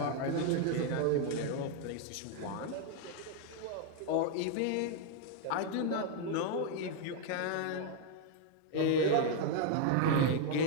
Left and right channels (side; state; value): both; different; correlation 0.00